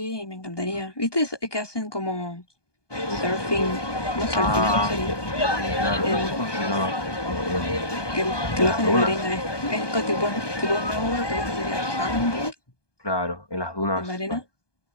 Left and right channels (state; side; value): late; right; 1.2 ms